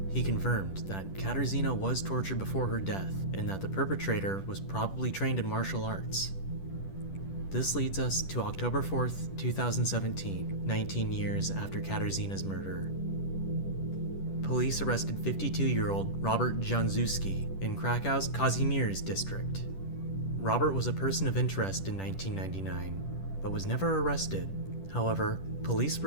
He confirmed that Katarzyna was tortured before her death and that the perpetrator was probably trained in martial arts. This leads us to October 4th, 2017, 19 years after Katarzyna's murder. Police arrested 52-year-old Robert Januszewski in Krakow's Kazimierz district. Robert was a person of interest in 1999, but was never arrested. However, police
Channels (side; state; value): right; late; 10 ms